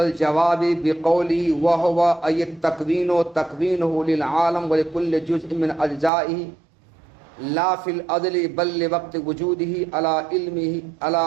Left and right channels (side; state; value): left; drops out; at 6.1 s